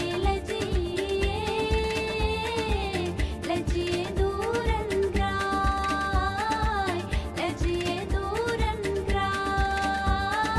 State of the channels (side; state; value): both; identical; correlation 1.00